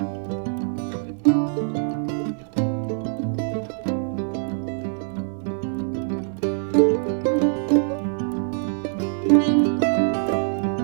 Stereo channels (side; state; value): left; silent; digital silence